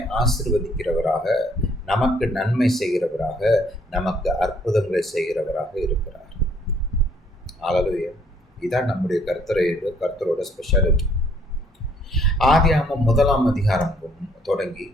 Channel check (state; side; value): normal; both; correlation 0.64